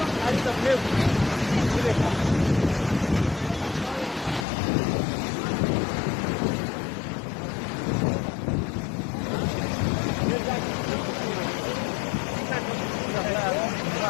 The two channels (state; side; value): drops out; right; at 4.5 s